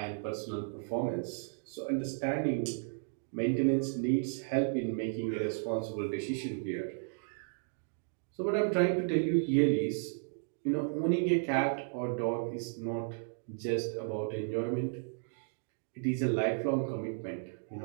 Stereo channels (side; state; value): left; silent; digital silence